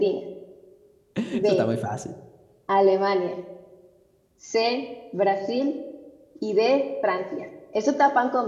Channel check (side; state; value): both; identical; correlation 1.00